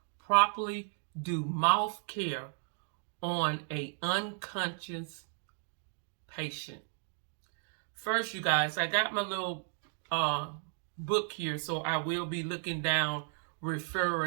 properly do mouth care on an unconscious patient. First, you guys, I got my little book here, so I will be looking down,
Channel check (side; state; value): left; silent; 55 dB below the other